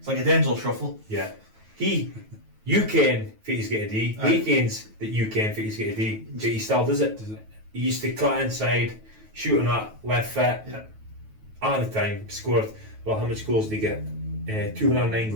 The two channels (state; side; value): late; left; 9.2 ms